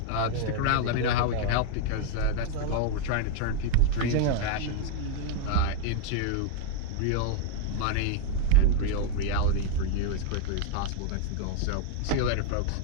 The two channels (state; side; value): different; both; correlation 0.00